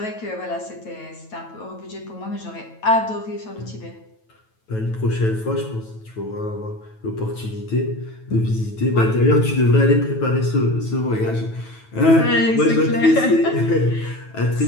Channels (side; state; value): right; late; 9.2 ms